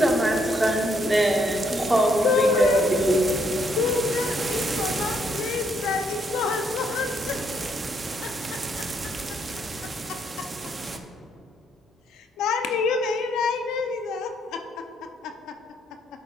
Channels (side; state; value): both; normal; correlation 0.72